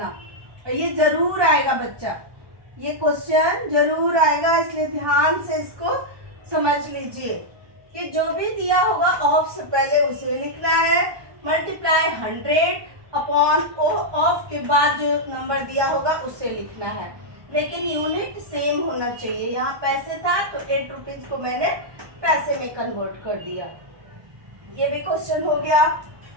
ये जरूर आएगा बच्चा, ये क्वेश्चन जरूर आएगा, इसलिए ध्यान से इसको समझ लीजिए कि जो भी दिया होगा ऑफ से पहले उसे लिखना है। मल्टीप्लाई 100 अपॉन ऑफ के बाद जो नंबर दिया होगा उसे लिखना है, लेकिन यूनिट सेम होना चाहिए। यहाँ पैसे था तो 8 रुपीज को मैंने पैसे में कन्वर्ट कर दिया। ये भी क्वेश्चन हो गया।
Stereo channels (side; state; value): left; late; 1.2 ms